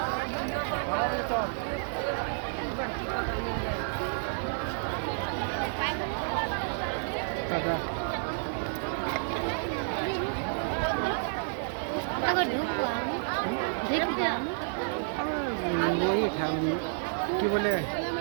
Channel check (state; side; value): silent; left; digital silence